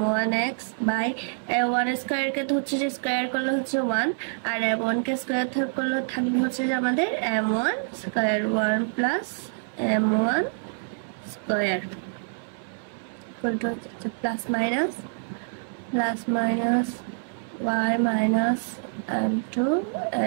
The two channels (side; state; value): left; silent; 61 dB below the other